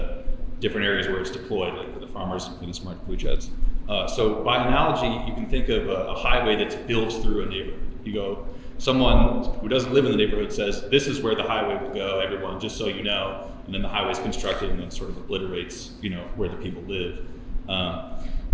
different areas where it's deployed, like for the farmers and for the smart food sheds. So by analogy, you can think of a highway that's built through a neighborhood. You go, someone who doesn't live in the neighborhood says, this is where the highway will go, everyone, just so you know, and then the highway's constructed and then sort of obliterates, where the people live.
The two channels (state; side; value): identical; both; correlation 1.00